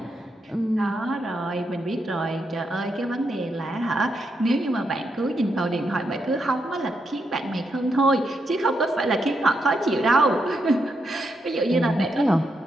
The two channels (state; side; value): normal; both; correlation 0.81